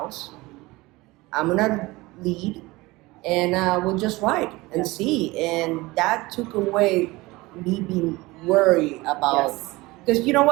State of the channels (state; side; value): quieter; left; 21.3 dB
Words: I'm gonna lead, and we'll just ride and see." And that took away me being worried about. Yes. Because you know